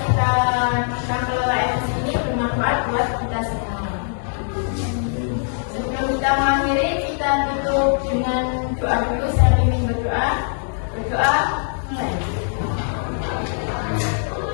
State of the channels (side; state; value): right; silent; 64 dB below the other